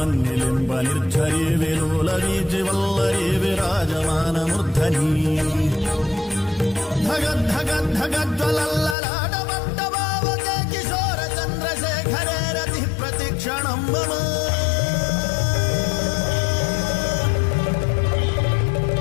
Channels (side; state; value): right; drops out; at 9.0 s